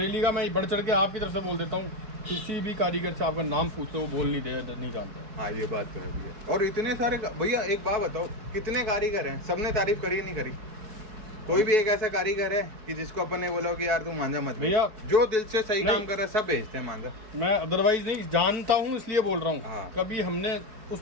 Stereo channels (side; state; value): left; late; 4.6 ms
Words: का मैं बढ़ चढ़ के आपकी तरफ से बोल देता हूँ, किसी भी कारीगर से आपका नाम पूछो वो बोल नहीं जानते। हाँ ये बात तो है भैया। और इतने सारे भैया एक बात बताओ, कितने कारीगर हैं, सबने तारीफ करी नहीं करी? कोई भी एक ऐसा कारीगर है कि जिसको अपन ने बोला कि यार तू मांझा मत भैया, जो दिल से सही काम कर रहा है सब भेजते हैं मांझा। मैं अदरवाइज नहीं जानता हूँ इसलिए बोल रहा हूँ। हाँ। कभी हमने उस